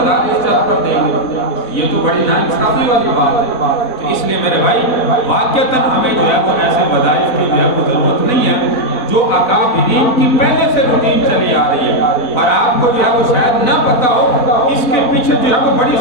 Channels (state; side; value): late; right; 4.0 ms